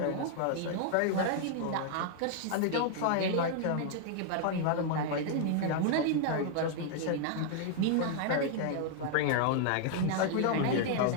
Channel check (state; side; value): different; both; correlation 0.00